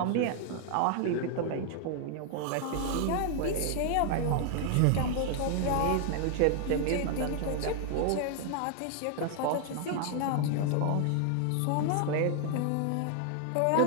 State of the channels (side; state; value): both; different; correlation 0.00